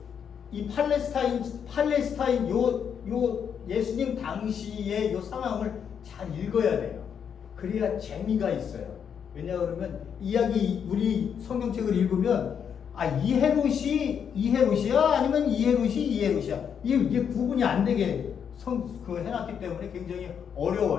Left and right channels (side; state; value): right; quieter; 7.6 dB